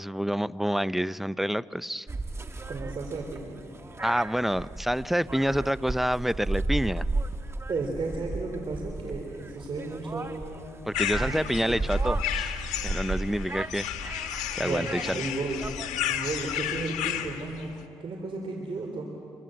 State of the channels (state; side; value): normal; both; correlation 0.83